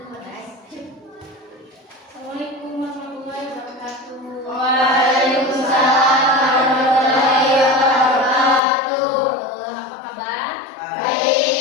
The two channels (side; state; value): right; drops out; at 8.6 s